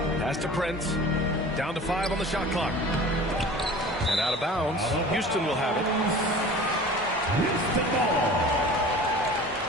Pass to Prince. Down to 5 on the shot clock. And out of bounds. Houston will have it.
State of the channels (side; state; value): both; normal; correlation 0.41